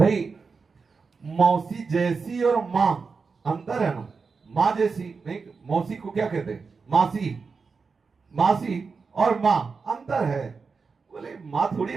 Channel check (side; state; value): left; quieter; 4.9 dB